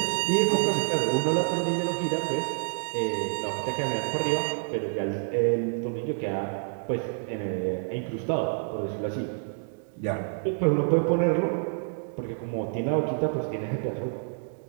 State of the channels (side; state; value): left; silent; digital silence